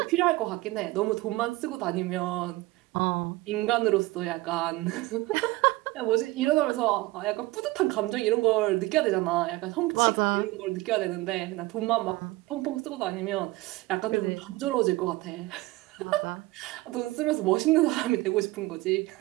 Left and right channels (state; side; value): quieter; left; 20.4 dB